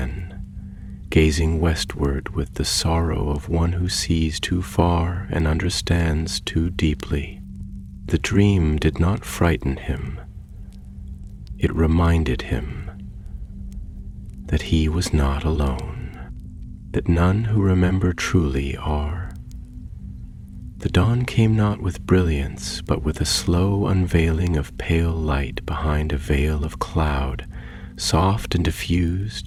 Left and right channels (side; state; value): both; identical; correlation 1.00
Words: gazing westward with the sorrow of one who sees too far and understands too deeply. The dream did not frighten him. It reminded him that he was not alone, that none who remember truly are. The dawn came not with brilliance, but with a slow unveiling of pale light behind a veil of cloud, soft and